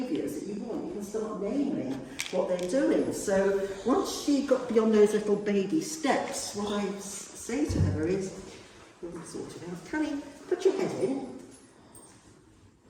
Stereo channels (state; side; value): identical; both; correlation 1.00